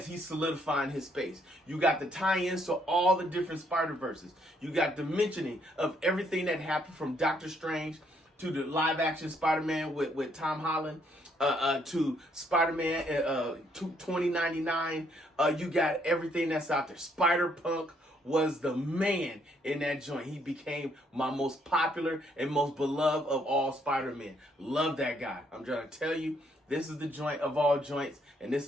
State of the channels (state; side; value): normal; both; correlation 0.70